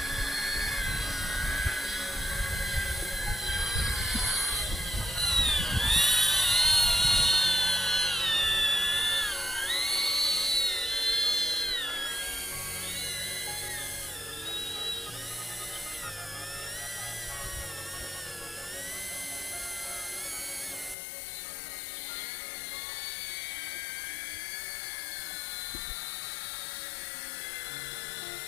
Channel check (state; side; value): drops out; right; at 21.0 s